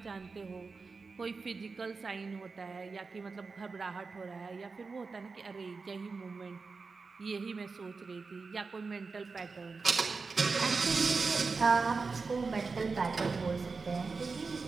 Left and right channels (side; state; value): left; quieter; 4.4 dB